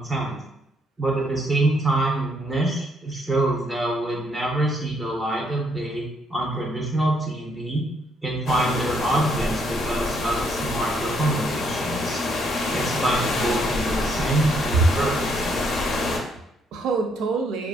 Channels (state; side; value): normal; both; correlation 0.71